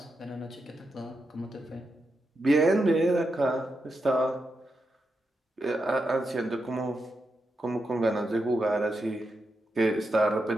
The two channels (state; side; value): normal; both; correlation 0.86